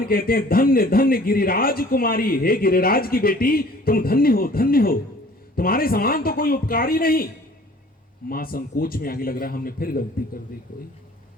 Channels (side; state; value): both; normal; correlation 0.51